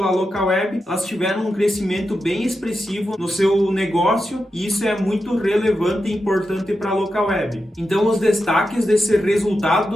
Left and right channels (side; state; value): both; normal; correlation 0.89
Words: Localweb, elas tiveram um crescimento bem expressivo no seu negócio e isso é muito relevante e importante para a Localweb. Então os destaques desse resultado